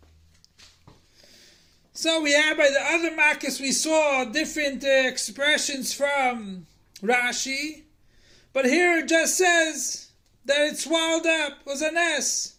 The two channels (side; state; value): both; identical; correlation 1.00